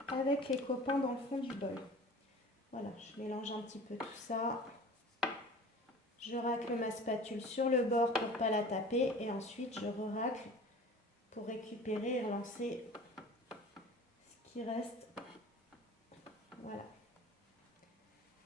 avec les copains dans le fond du bol. Voilà, je mélange un petit peu tout ça. Je racle ma spatule sur le bord pour ne pas la taper et ensuite je racle pour récupérer et relancer ce qui reste. Voilà.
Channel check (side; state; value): both; normal; correlation 0.41